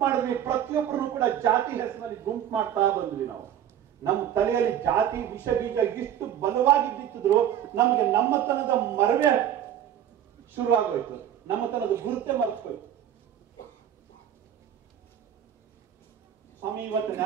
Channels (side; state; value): left; quieter; 10.3 dB